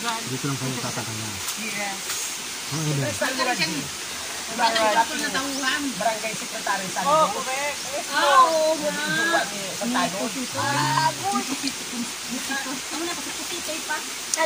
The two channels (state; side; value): identical; both; correlation 1.00